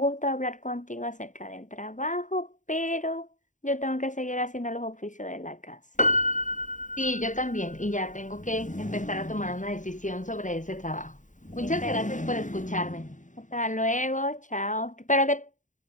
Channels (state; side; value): late; right; 0.36 ms